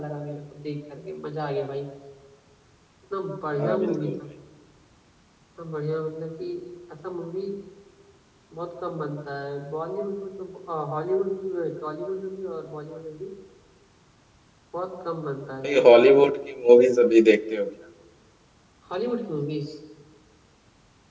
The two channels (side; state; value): both; identical; correlation 1.00